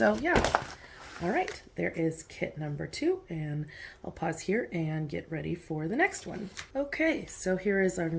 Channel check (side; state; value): both; identical; correlation 1.00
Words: yeah. All right, there is kit number 2, and I'll pause here and get ready for the next one. Okay, so here is our